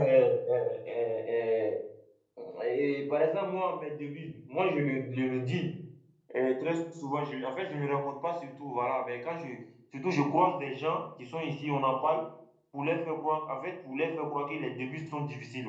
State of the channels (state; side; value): identical; both; correlation 1.00